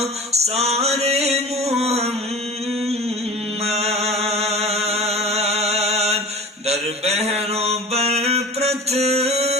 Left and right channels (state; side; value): normal; both; correlation 0.36